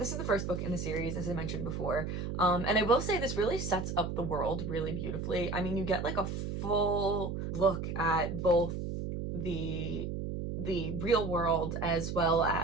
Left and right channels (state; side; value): noise; right; hum, 4 dB below the sound